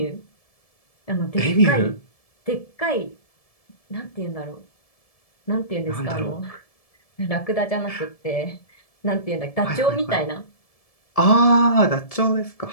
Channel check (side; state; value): right; late; 1.7 ms